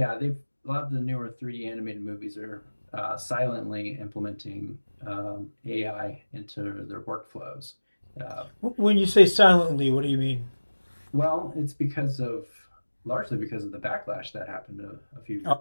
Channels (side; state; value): both; inverted; correlation -1.00